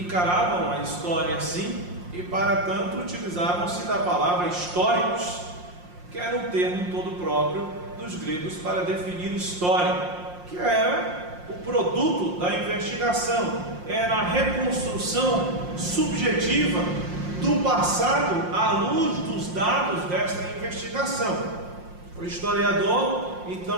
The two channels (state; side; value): late; left; 5.6 ms